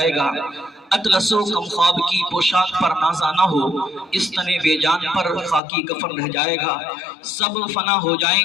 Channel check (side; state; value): right; drops out; at 5.6 s